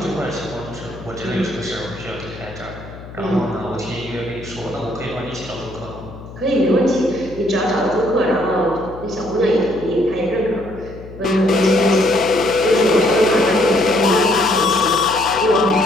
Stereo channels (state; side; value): noise; left; hum, 15 dB below the sound